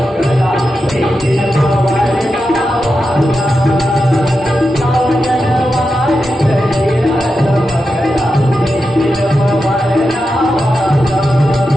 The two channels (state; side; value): normal; both; correlation 0.89